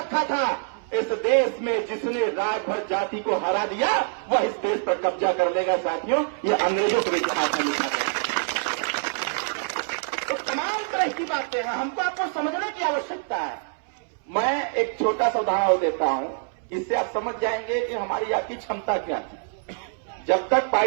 था, इस देश में जिसने राजभर जाति को हरा दिया वह इस देश पर कब्जा कर लेगा। साथियों, यह अंग्रेजों के इतिहास में लिखा गया। तो तमाम तरह की बातें हैं, हमको आपको समझने की आवश्यकता है। मैं एक छोटा सा उदाहरण देता हूं, इससे आप समझ जाएंगे कि हमारी आपकी क्षमता क्या थी। जब तक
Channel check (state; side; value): silent; left; 62 dB below the other